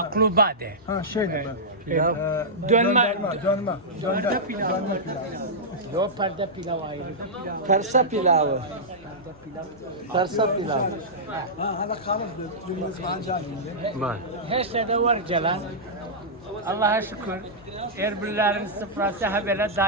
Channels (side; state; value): both; normal; correlation -0.12